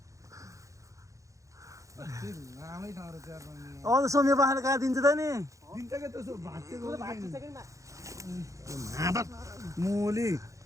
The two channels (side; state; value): left; late; 0.15 ms